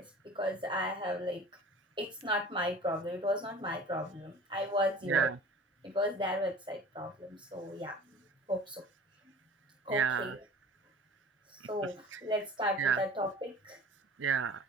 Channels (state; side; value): normal; both; correlation 0.43